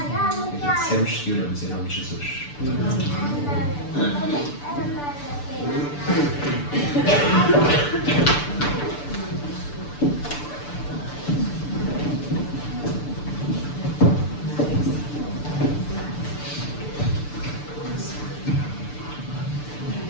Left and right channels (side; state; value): right; late; 6.8 ms